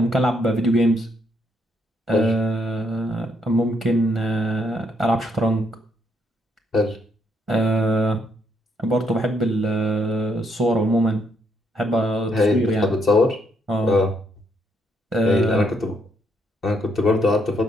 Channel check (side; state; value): both; normal; correlation 0.73